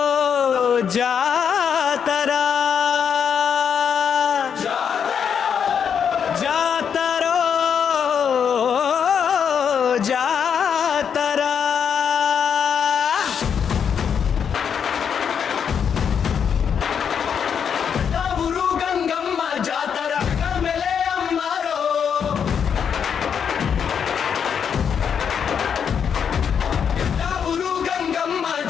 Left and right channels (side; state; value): right; quieter; 7.4 dB